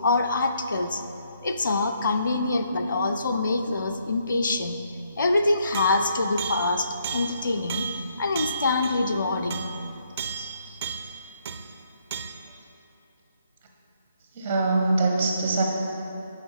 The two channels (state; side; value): inverted; both; correlation -0.71